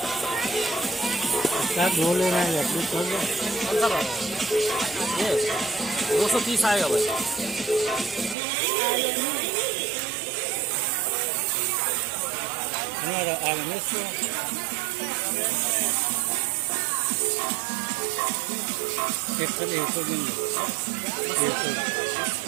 क्या दो लेना है? कौन सा वाला? ये 230 आएगा भाई. हमारा आगे से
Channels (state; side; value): drops out; left; at 8.3 s